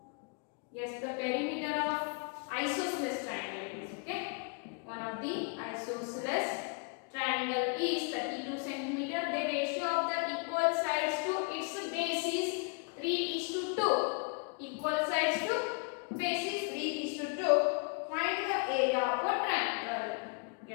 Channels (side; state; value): right; quieter; 36.0 dB